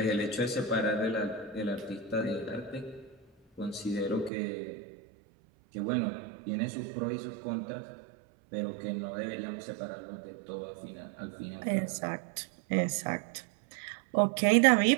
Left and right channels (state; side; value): drops out; left; at 4.3 s